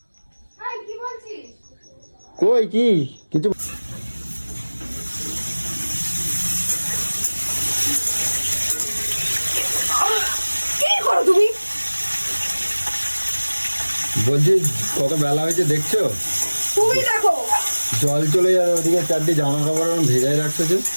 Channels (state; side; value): inverted; both; correlation -1.00